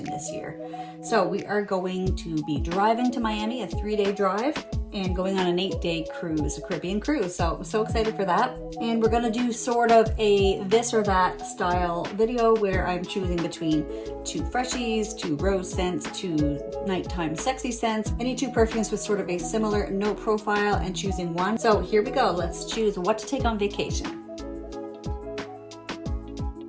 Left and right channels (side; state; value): both; identical; correlation 1.00